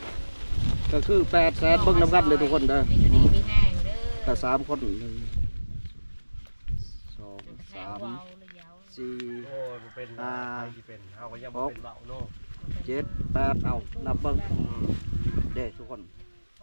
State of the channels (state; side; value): inverted; both; correlation -1.00